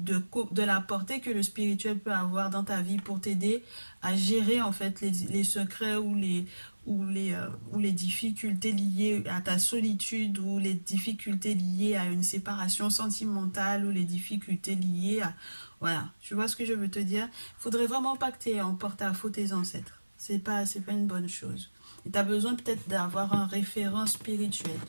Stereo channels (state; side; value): inverted; both; correlation -1.00